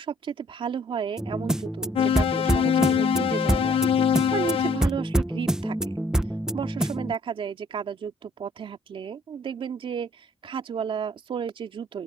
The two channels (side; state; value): both; normal; correlation 0.61